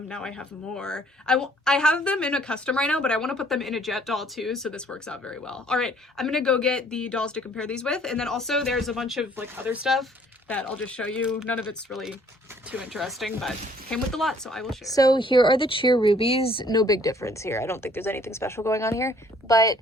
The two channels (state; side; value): normal; both; correlation 0.59